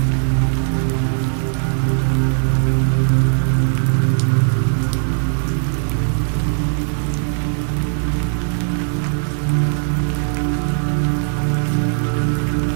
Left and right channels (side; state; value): left; silent; 64 dB below the other